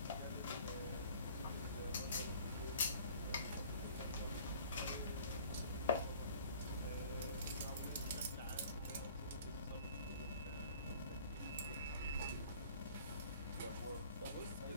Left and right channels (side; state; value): both; inverted; correlation -0.50